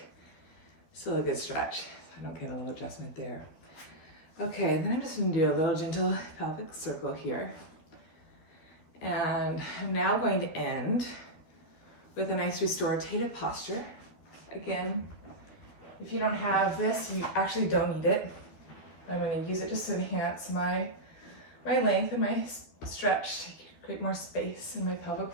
Still a good stretch. I don't get a little adjustment there. Okay, and then I'm just gonna do a little gentle pelvic circle here. And I'm now going to end with a nice restorative posture. Again, if you don't have this, you actually don't need it. I'm going to use it just to enhance my length and my stretch to create more space in my pelvic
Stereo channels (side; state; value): right; late; 12 ms